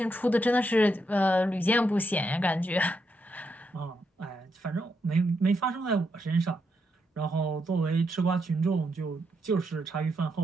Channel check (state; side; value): normal; both; correlation 0.81